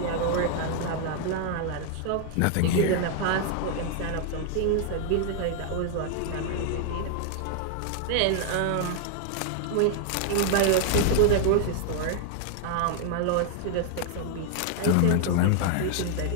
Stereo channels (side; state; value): both; different; correlation 0.00